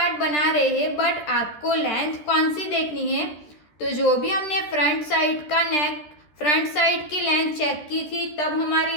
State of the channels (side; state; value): right; late; 13 ms